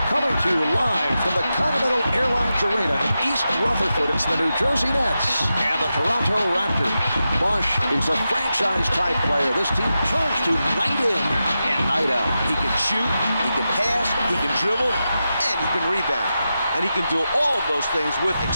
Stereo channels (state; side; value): inverted; both; correlation -0.90